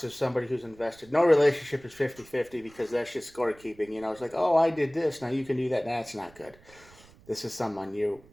is somebody who's invested. No relationship is 50-50 because that's just scorekeeping. It's like, oh, I did this, now you can do that. That's not good. This is someone you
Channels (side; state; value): right; noise; rumble, 25 dB below the sound